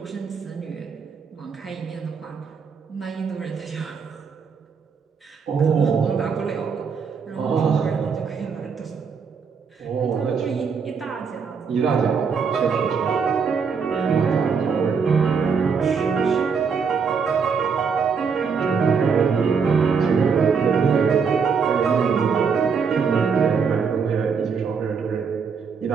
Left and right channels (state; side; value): quieter; left; 5.9 dB